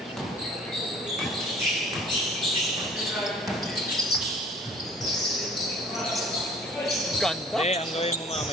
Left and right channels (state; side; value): normal; both; correlation 0.51